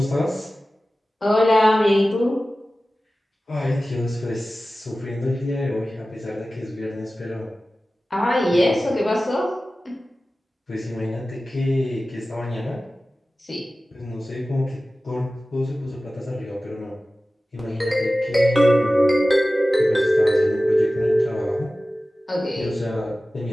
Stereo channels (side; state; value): both; normal; correlation 0.96